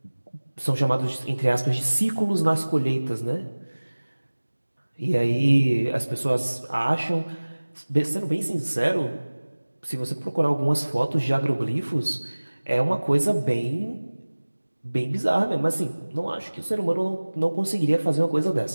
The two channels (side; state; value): both; inverted; correlation -1.00